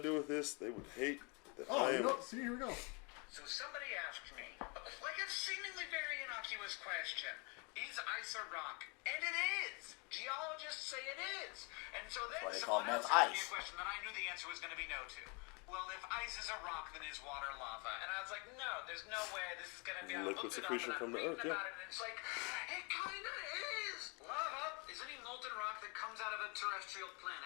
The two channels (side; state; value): right; quieter; 31.9 dB